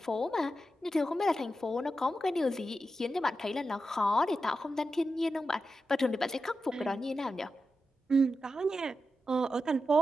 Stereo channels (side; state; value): both; normal; correlation 0.90